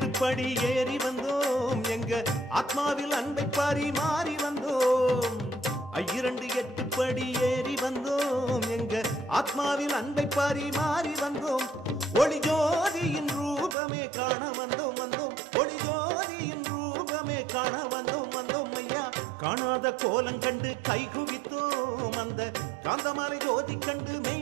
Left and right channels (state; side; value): drops out; left; at 13.8 s